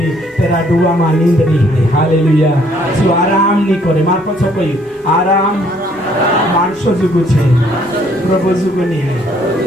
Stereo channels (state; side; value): normal; both; correlation 0.64